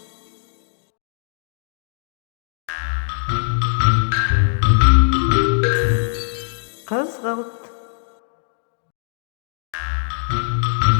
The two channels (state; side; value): silent; right; digital silence